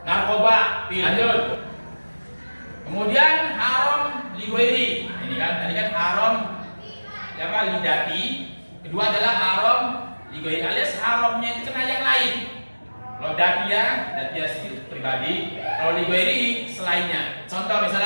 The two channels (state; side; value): inverted; both; correlation -1.00